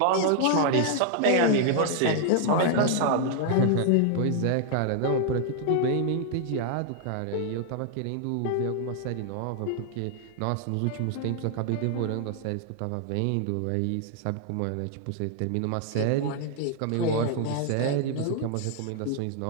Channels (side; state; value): both; different; correlation 0.00